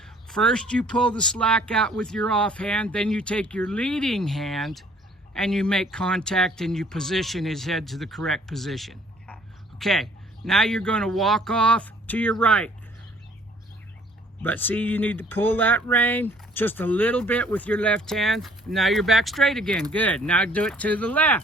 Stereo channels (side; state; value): both; normal; correlation 0.58